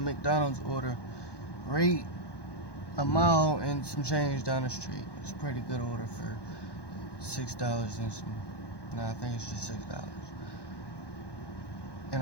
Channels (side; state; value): right; late; 1.1 ms